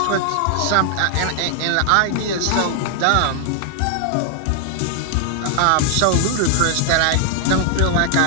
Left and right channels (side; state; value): both; different; correlation 0.00